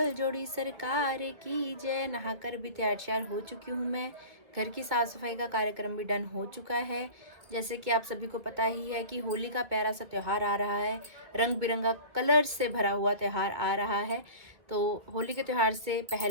जोड़ी सरकार की जय। नहाकर भी तैयार हो चुकी हूँ मैं। घर की साफ सफाई का कार्यक्रम भी डन हो चुका है। जैसे कि आप सभी को पता ही है कि होली का प्यारा सा त्यौहार आ रहा है, रंग बिरंगा कलर से भरा हुआ त्यौहार आ रहा है। तो होली के त्यौहार से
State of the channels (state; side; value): late; left; 1.9 ms